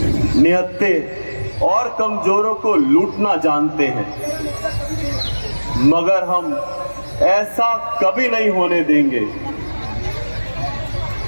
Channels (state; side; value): inverted; both; correlation -1.00